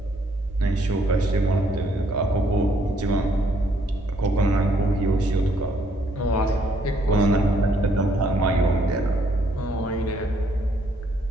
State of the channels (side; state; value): both; normal; correlation 0.68